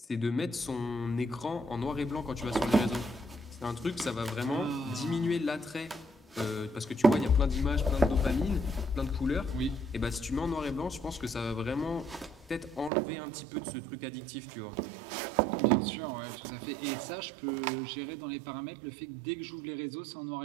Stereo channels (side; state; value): left; drops out; at 12.9 s